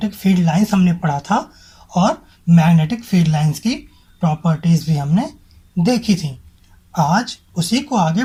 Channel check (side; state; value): both; identical; correlation 1.00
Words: फील्ड लाइंस हमने पढ़ा था और मैग्नेटिक फील्ड लाइंस की प्रॉपर्टीज़ भी हमने देखी थी। आज उसी को आगे